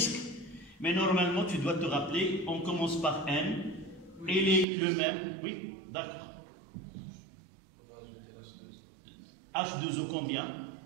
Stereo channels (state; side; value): drops out; left; at 4.7 s